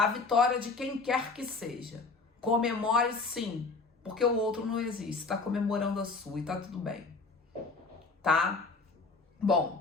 vitória de quem quer que seja. Comemore sim, porque o outro não existe, está comemorando a sua e tá tudo bem, tá?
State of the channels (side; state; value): right; quieter; 4.0 dB